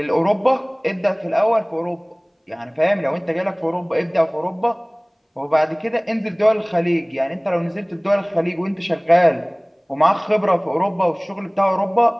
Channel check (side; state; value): both; identical; correlation 1.00